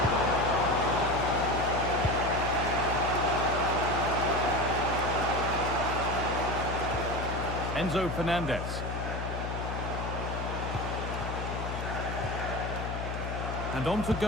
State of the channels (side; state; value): left; noise; hum, 4 dB below the sound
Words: Enzo Fernandez. And on to